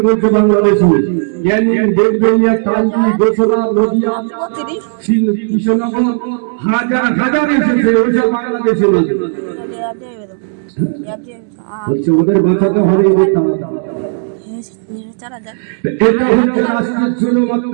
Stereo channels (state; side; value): silent; left; digital silence